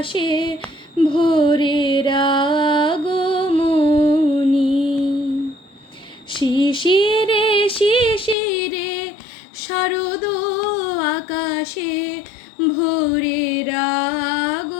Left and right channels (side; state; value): right; drops out; at 8.3 s